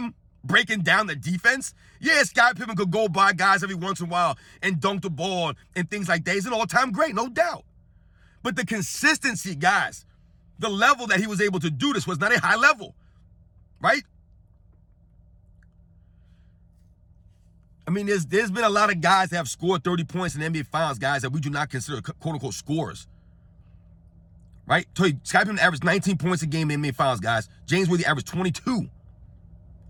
breaking down the defense. Yeah, Scottie Pippen could go by guys every once in a while and dunk the ball and things like that. He's an all-time great, no doubt. But the consistency, guys, the level that he was able to do this was not a high level, right? I mean, there's been a lot of guys that have scored 30 points in the NBA Finals, guys, that we do not consider quote-unquote scorers, right? So Scottie Pippen averaged 19 points a game in the NBA Finals, guys. James Worthy averaged 22.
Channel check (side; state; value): both; identical; correlation 1.00